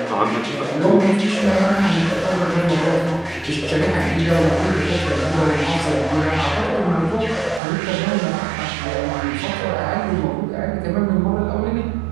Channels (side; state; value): left; drops out; at 7.6 s